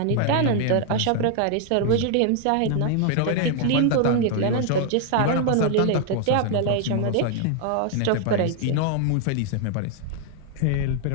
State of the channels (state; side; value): different; both; correlation 0.00